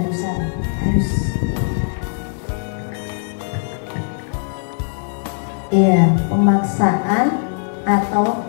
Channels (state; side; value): silent; right; 57 dB below the other